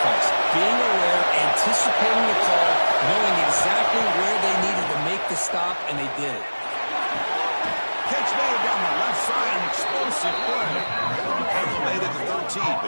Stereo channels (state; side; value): inverted; both; correlation -1.00